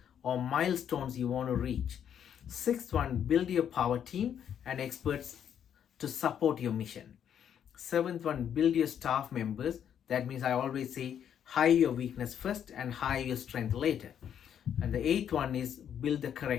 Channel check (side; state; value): right; quieter; 9.0 dB